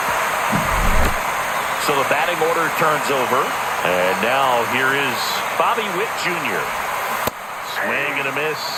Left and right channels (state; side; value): identical; both; correlation 1.00